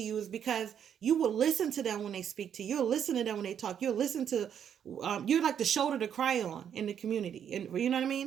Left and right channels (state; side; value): quieter; left; 8.7 dB